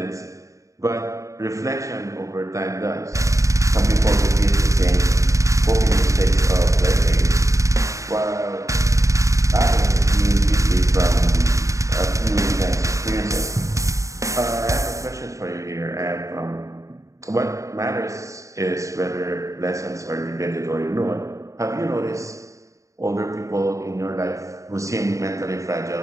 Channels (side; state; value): left; late; 0.15 ms